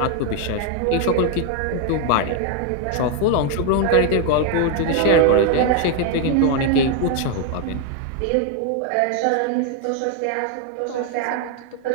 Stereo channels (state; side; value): different; both; correlation 0.01